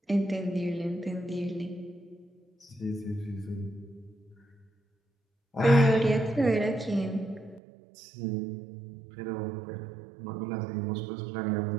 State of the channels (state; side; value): drops out; left; at 7.6 s